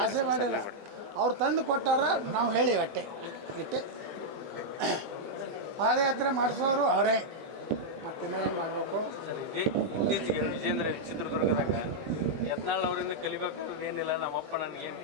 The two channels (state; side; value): late; left; 20 ms